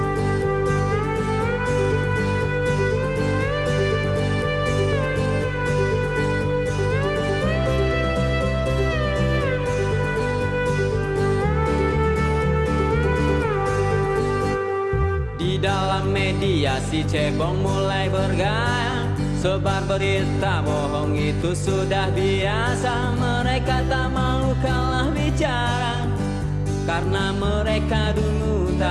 Di dalam media si cebong mulai bergaya, sebar berita bohong itu sudah biasa. Mereka tak mau kalah bicara, karena mereka dulu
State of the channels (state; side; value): identical; both; correlation 1.00